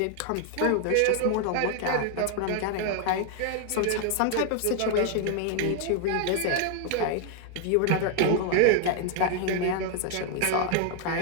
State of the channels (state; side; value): different; both; correlation 0.00